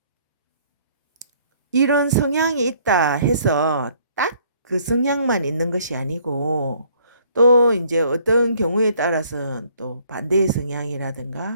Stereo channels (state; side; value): inverted; both; correlation -0.62